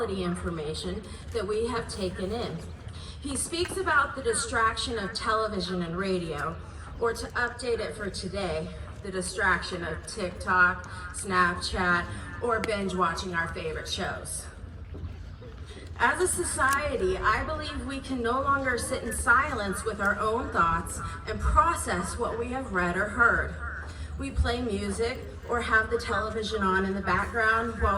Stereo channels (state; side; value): identical; both; correlation 1.00